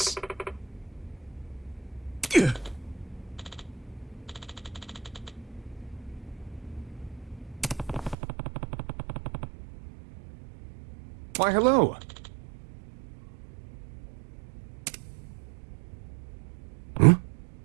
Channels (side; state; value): left; drops out; at 8.2 s